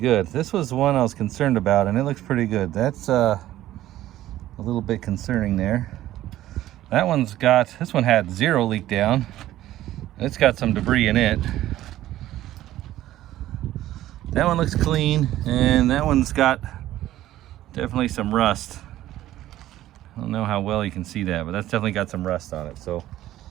This was the one I was concerned about, and it looks pretty good. That's a little bit concerning there. That one's got, this one had zero leak down. It's got some debris in it. That one looks clean, and that one's got definitely some rust. I don't know how well you can see that, but that's definitely got some rust on it. So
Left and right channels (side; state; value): left; quieter; 14.1 dB